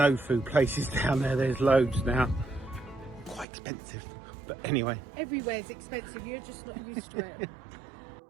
food places down there. There's loads now. Quite expensive, but anyway. Everywhere's expensive, you're just not used to it.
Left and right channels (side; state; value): left; drops out; at 3.5 s